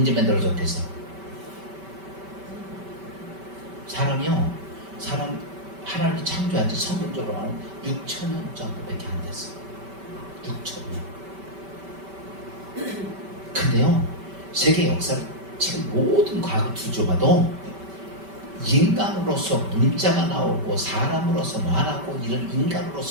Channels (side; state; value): left; late; 5.2 ms